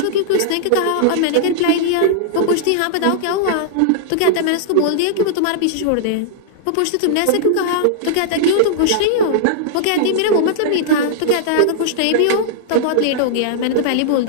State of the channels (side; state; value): both; different; correlation -0.01